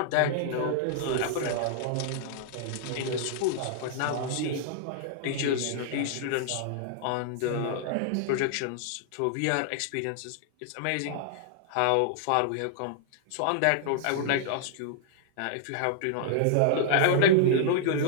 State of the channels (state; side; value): different; both; correlation -0.01